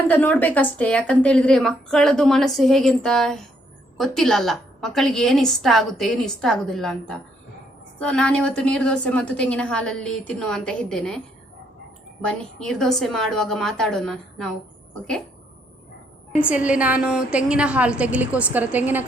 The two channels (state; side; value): normal; both; correlation 0.71